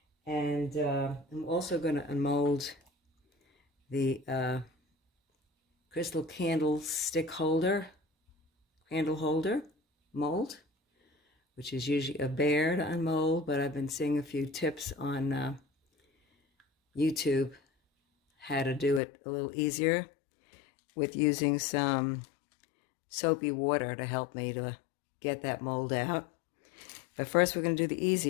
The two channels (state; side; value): drops out; right; at 19.0 s